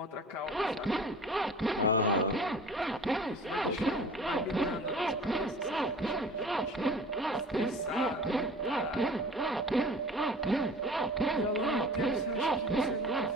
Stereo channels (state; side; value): normal; both; correlation 0.42